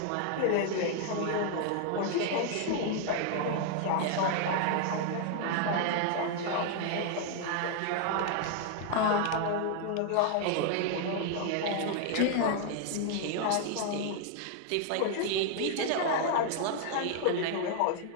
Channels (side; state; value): both; different; correlation 0.00